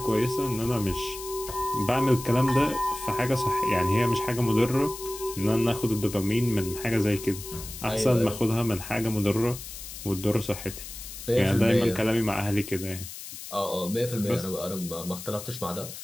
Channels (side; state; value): left; noise; hiss, 11 dB below the sound